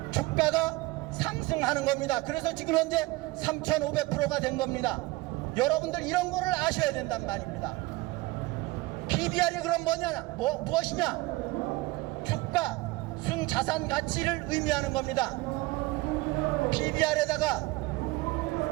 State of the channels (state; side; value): quieter; left; 20.8 dB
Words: 주가가 상승하는 겁니다. 그래서 지금 현재 3,500%가 된 겁니다. 여러분들 이런 거를 아셔야 된단 말입니다. PBR이 그럼 무엇이냐? 주가 순자산 가치를 의미하는 겁니다. PBR에다가